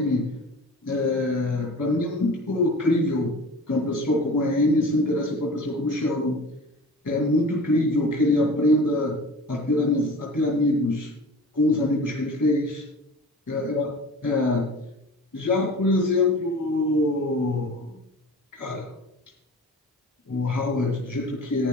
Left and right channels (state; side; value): normal; both; correlation 0.40